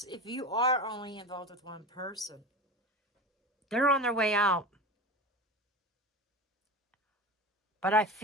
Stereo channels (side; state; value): both; normal; correlation 0.28